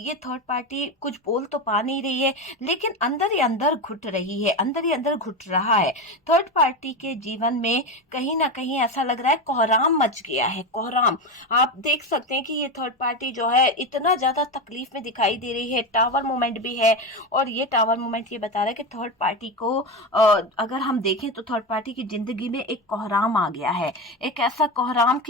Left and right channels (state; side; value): normal; both; correlation 0.17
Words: थर्ड पार्टी कुछ बोल तो पा नहीं रही है, लेकिन अंदर ही अंदर घुट रही है, अंदर ही अंदर घुट रहा है। थर्ड पार्टी के जीवन में कहीं ना कहीं ऐसा लग रहा है कोहराम मच गया है, कोहराम। आप देख सकते हैं कि ये थर्ड पार्टी जो है इतना ज्यादा तकलीफ में दिखाई दे रही है, टावर मूवमेंट भी है, और ये टावर मूवमेंट ये बता रहा है कि थर्ड पार्टी को अगर हम देखें तो थर्ड पार्टी की जिंदगी में एक कोहराम आ गया है, एक ऐसा कोहराम